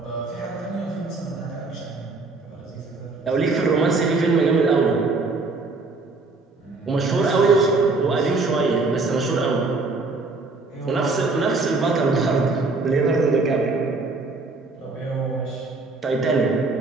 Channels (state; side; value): quieter; left; 3.6 dB